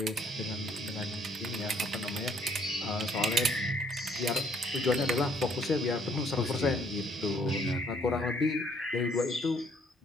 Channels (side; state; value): both; normal; correlation 0.64